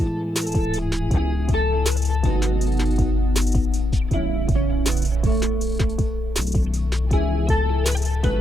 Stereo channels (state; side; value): normal; both; correlation 0.83